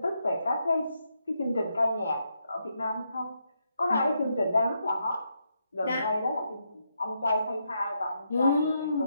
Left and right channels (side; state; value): both; inverted; correlation -0.80